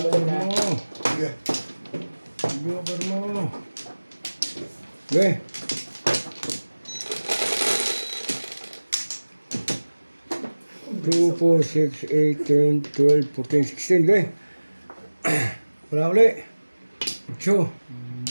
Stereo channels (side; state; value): both; inverted; correlation -1.00